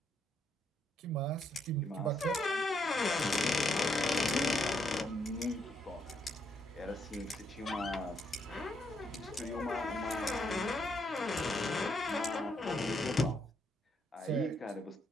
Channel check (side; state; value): both; normal; correlation 0.75